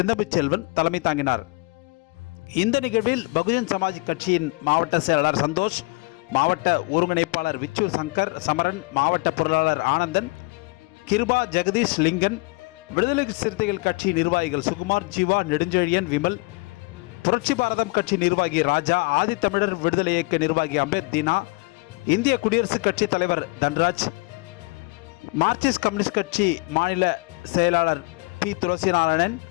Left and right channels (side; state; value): right; quieter; 27.0 dB